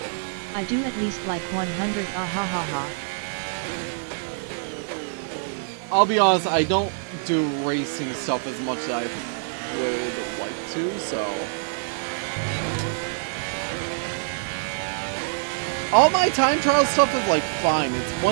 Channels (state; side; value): silent; left; digital silence